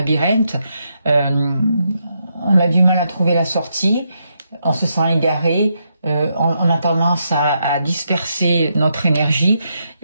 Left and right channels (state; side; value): inverted; both; correlation -0.80